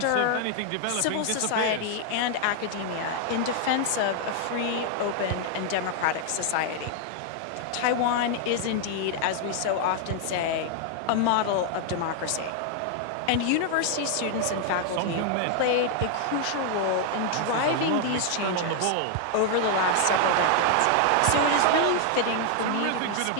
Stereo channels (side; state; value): both; different; correlation 0.00